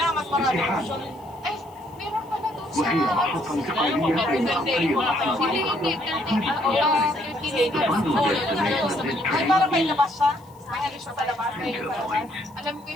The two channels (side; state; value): left; noise; hiss, 29 dB below the sound